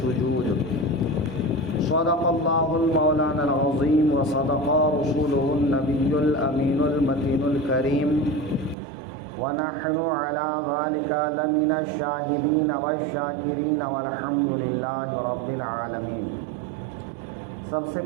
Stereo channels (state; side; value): drops out; left; at 8.8 s